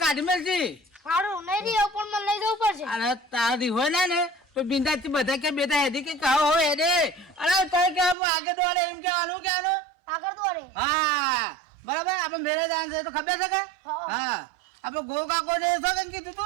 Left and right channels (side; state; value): left; drops out; at 8.2 s